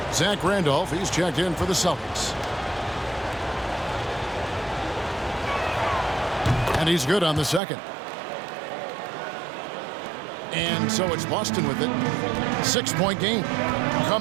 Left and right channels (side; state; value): left; drops out; at 7.6 s